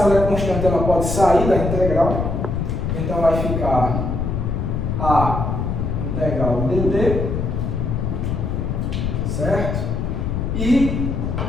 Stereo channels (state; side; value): noise; left; rumble, 1 dB below the sound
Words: é constante, ela pode sair da integral, então vai ficar a integral dt, certo? E